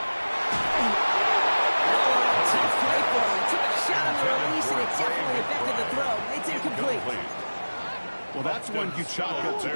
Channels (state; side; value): inverted; both; correlation -1.00